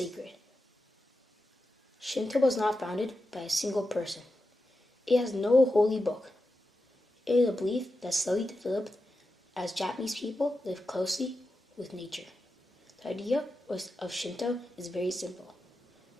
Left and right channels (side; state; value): both; normal; correlation 0.90